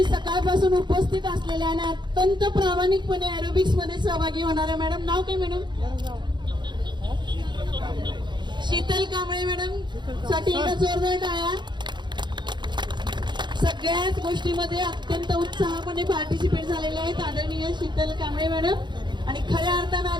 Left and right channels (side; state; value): left; late; 0.22 ms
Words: सकाळपासून उपस्थित असलेल्या आणि अत्यंत प्रामाणिकपणे एरोबिक्स मध्ये सहभागी होणाऱ्या मॅडम. नाव काय मॅडम? शीतल कांबळे मॅडम साठी एकदा जोरदार टाळ्या. सगळ्याच गोष्टीमध्ये अत्यंत उत्साहापणे पार्टिसिपेट झालेले आहेत आदरणीय शीतल कांबळे मॅडम. आणि खऱ्या अर्थानं